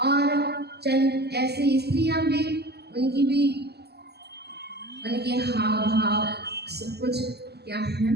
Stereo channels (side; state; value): left; late; 0.47 ms